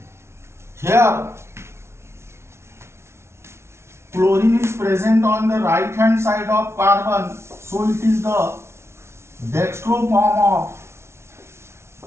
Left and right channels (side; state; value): left; late; 0.13 ms